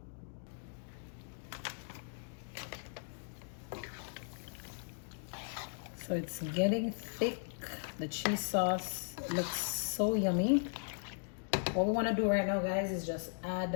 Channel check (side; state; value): right; silent; digital silence